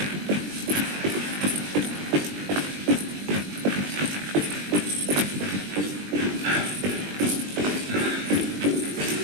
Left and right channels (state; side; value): late; left; 20 ms